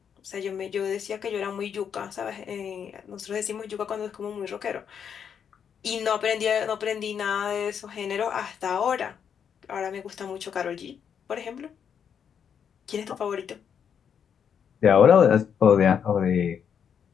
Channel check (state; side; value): quieter; right; 7.7 dB